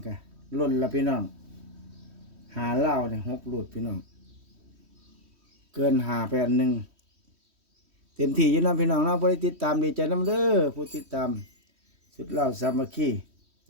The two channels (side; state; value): left; late; 3.1 ms